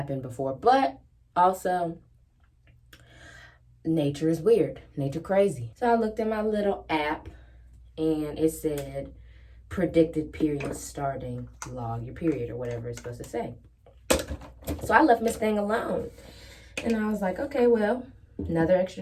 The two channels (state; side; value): identical; both; correlation 1.00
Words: before. But also, nature is weird. Nature crazy. So I looked at my little app and it said predicted period starting, log your period, or whatever it's supposed to say. So I left Miss Thing alone. And I was like, okay, well, another